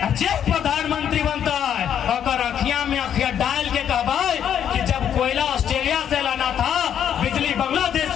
जब प्रधानमंत्री बनता है और अखिया में अखिया डाल के कहबाए कि जब कोयला ऑस्ट्रेलिया से लाना था, बिजली बांग्लादेश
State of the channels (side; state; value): right; quieter; 9.3 dB